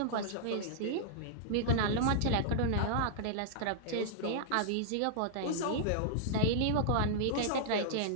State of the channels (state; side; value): different; both; correlation -0.02